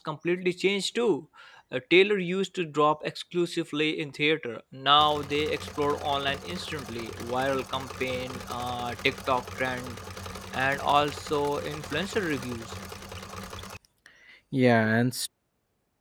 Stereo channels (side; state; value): both; identical; correlation 1.00